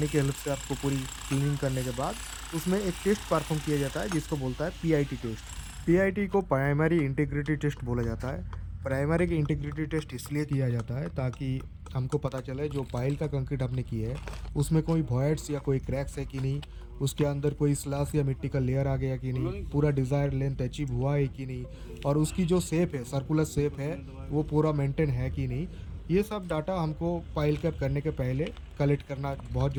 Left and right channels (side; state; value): both; identical; correlation 1.00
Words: के हेल्प से आपको पूरी क्लीनिंग करने के बाद उसमें एक टेस्ट परफॉर्म किया जाता है जिसको बोलता है पीआईटी टेस्ट। पीआईटी को प्राइमरी इंटीग्रिटी टेस्ट बोला जाता है। प्राइमरी इंटीग्रिटी टेस्ट इसलिए किया जाता है ताकि हमको पता चले जो पाइल का कंक्रीट आपने किया है उसमें कोई वॉइड्स या कोई क्रैक्स है कि नहीं, उसके अंदर कोई स्लैश या मिट्टी का लेयर आ गया कि नहीं, पूरा डिज़ायर लेंथ अचीव हुआ है कि नहीं, और उसकी जो शेप है, सर्कुलर शेप है, वो पूरा मेंटेन है कि नहीं। ये सब डाटा हमको पाइल कैप करने के पहले कलेक्ट करना बहुत